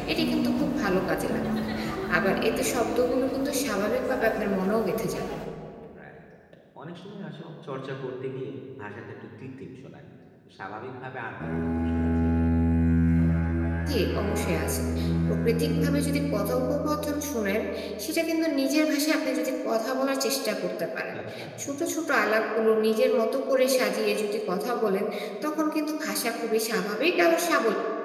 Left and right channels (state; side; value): identical; both; correlation 1.00